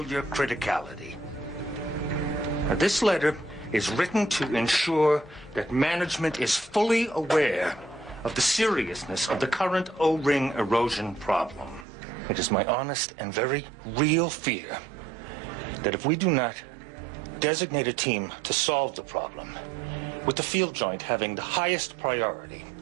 criticality. Now, this letter is written to ensure that management is fully aware of the seriousness of the current O-ring erosion problem. It is my honest and very real fear that if we do not designate a team to solve the problem, with the field joint having the highest priority,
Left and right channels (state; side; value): drops out; left; at 11.9 s